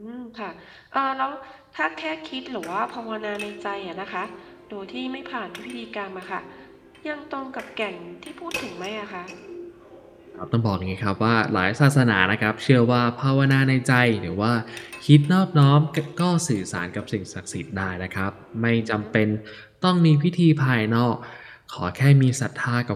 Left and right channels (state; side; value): identical; both; correlation 1.00